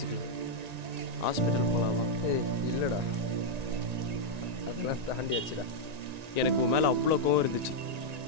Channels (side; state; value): left; late; 1.9 ms